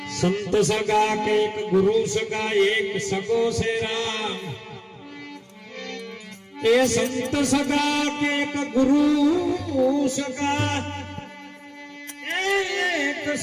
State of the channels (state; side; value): identical; both; correlation 1.00